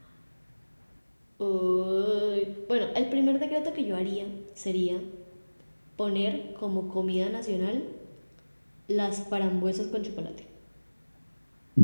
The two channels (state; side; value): inverted; both; correlation -1.00